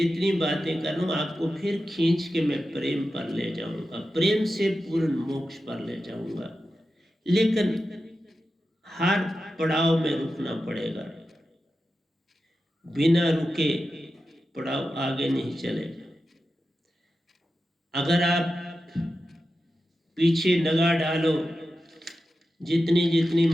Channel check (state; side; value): normal; both; correlation 0.91